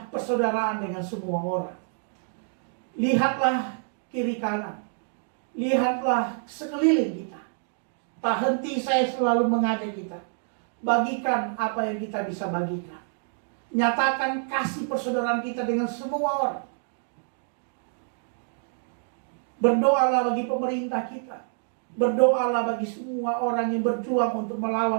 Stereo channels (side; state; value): left; silent; 60 dB below the other